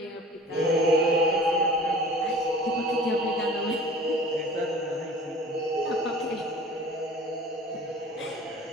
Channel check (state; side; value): normal; both; correlation 0.44